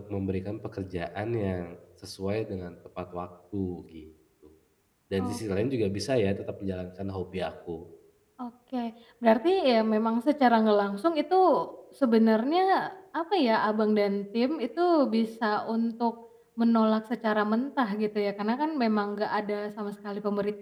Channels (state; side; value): identical; both; correlation 1.00